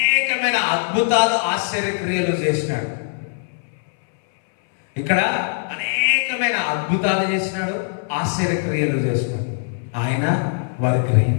అద్భుతాలు, ఆశ్చర్యక్రియలు చేసినాడు. ఇక్కడ అనేకమైన అద్భుతాలు చేసినాడు, ఆశ్చర్యక్రియలు చేసినాడు. ఆయన వారు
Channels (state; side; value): silent; right; 64 dB below the other